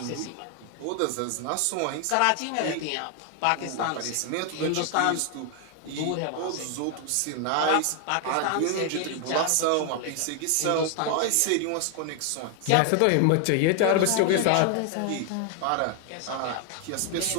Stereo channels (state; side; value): different; both; correlation 0.00